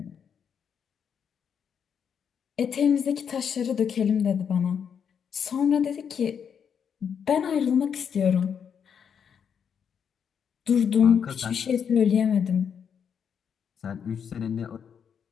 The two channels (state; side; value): quieter; right; 7.5 dB